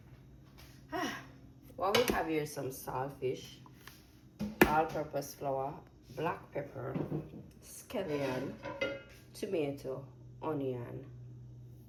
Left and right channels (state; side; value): identical; both; correlation 1.00